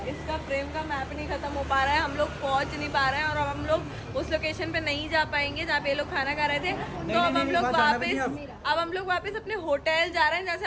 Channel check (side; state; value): both; identical; correlation 1.00